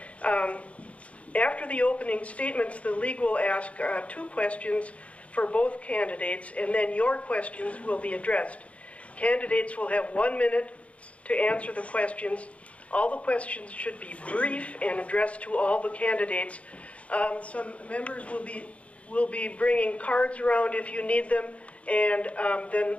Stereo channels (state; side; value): late; right; 0.064 ms